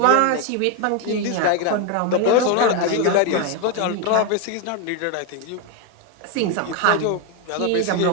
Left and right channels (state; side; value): different; both; correlation 0.01